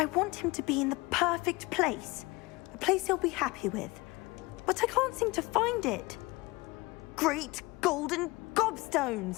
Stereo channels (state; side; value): quieter; right; 23.0 dB